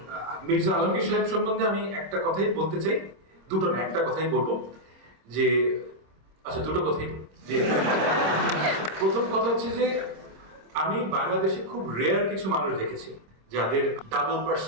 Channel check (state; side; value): late; left; 26 ms